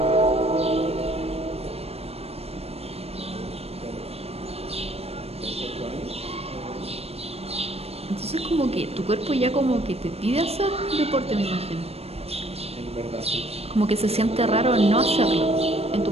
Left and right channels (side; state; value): left; late; 0.29 ms